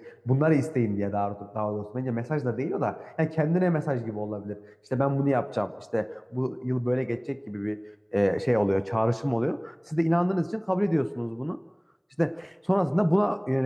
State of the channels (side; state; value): both; identical; correlation 1.00